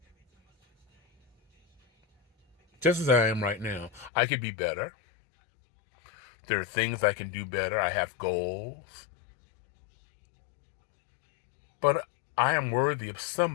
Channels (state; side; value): drops out; right; at 4.1 s